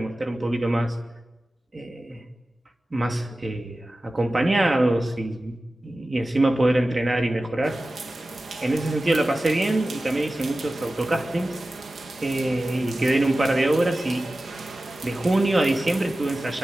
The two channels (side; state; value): both; normal; correlation 0.95